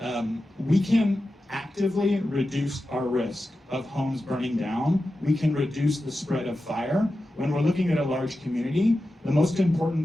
we can actively reduce our risk of homes burning down. We can reduce the spread of fire. When we're looking at a large community, the most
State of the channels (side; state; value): both; normal; correlation 0.92